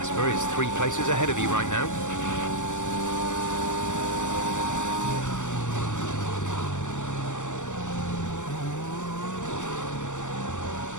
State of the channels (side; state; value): right; late; 0.85 ms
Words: is 3 places ahead of you right now.